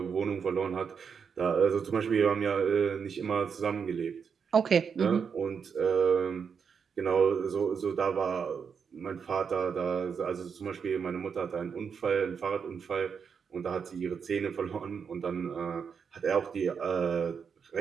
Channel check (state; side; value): quieter; left; 6.5 dB